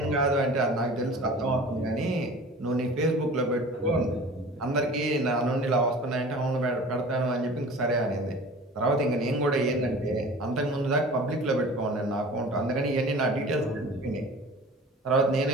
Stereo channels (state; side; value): normal; both; correlation 0.41